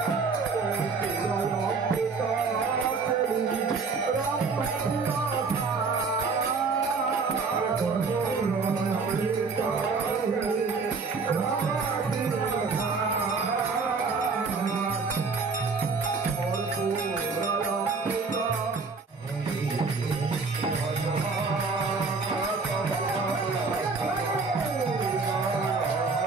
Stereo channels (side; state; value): left; quieter; 4.5 dB